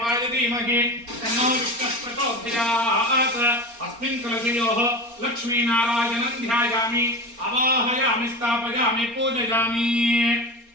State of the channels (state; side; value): late; left; 4.3 ms